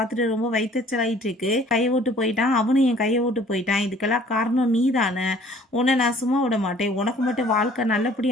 ரொம்ப வைத்தச்சலாயிட்டு இருக்கு. கையை விட்டு போயிட்டான், அவனும் என் கையை விட்டு போயிட்டான், இதுக்கெல்லாம் காரணம் நீ தானே, உன்னை நான் சும்மா விட மாட்டேன், உனக்கு மட்டும் வாழ்க்கை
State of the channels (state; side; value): normal; both; correlation 0.55